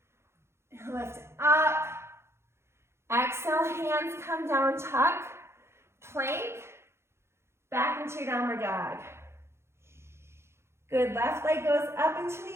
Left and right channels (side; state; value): left; late; 0.13 ms